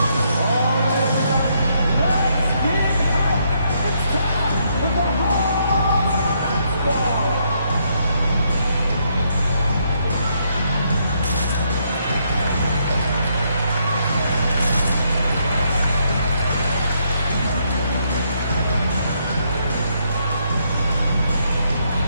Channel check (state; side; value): inverted; both; correlation -0.74